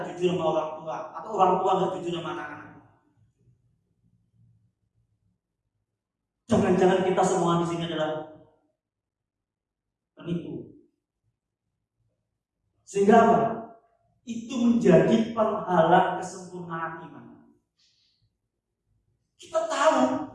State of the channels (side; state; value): both; identical; correlation 1.00